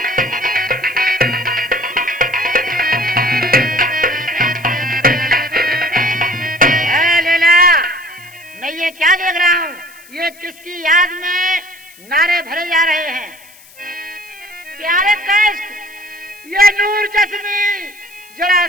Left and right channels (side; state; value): left; noise; hiss, 23 dB below the sound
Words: मैं ये क्या देख रहा हूँ? ये किसकी याद में नारे भरे जा रहे हैं? प्यारे कैस, ये नूर चश्मी जरा